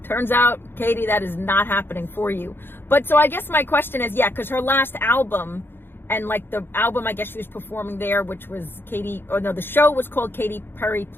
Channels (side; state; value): right; late; 0.10 ms